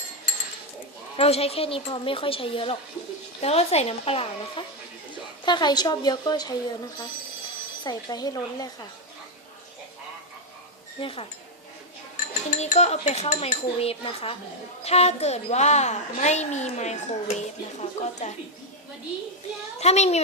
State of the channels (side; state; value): both; normal; correlation 0.04